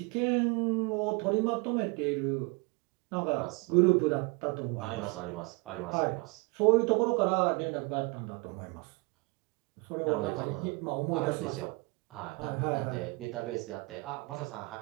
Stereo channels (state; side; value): quieter; left; 27.8 dB